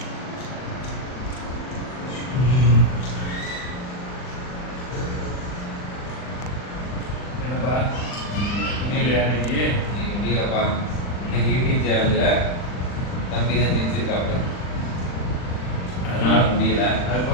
என்னப்பா முடியலையா இன்னைக்கு? இன்னைக்கு முடியலப்பா. இன்னைக்கு யூடியூப் சேனலில் தம்பி தான் ஜெயிச்சிருக்காப்புல, அதனால முடியல.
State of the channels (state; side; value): late; right; 40 ms